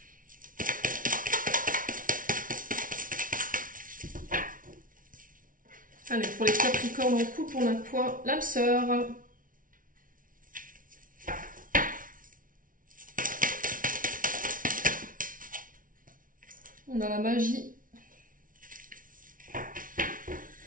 Allez, pour les Capricornes en couple, on a quoi? L'âme sœur. On a la magie.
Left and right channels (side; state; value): left; late; 0.39 ms